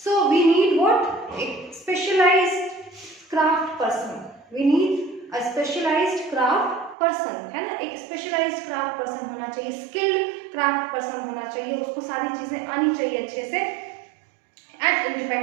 so we need what, एक specialised craft person, we need a specialised craft person, है ना, एक स्पेशलाइज्ड क्राफ्ट पर्सन होना चाहिए, स्किल्ड क्राफ्ट पर्सन होना चाहिए, उसको सारी चीजें आनी चाहिए अच्छे से, एंड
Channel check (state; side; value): drops out; left; at 7.0 s